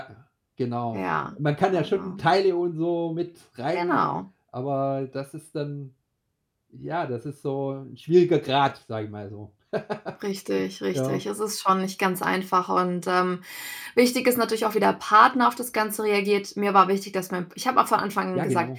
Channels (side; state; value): both; identical; correlation 1.00